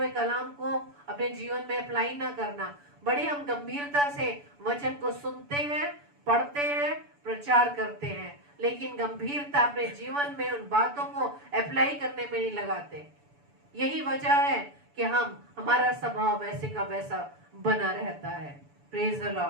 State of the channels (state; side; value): late; left; 7.0 ms